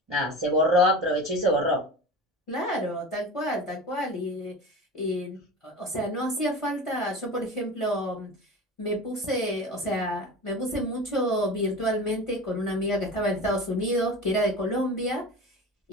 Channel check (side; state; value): both; normal; correlation 0.32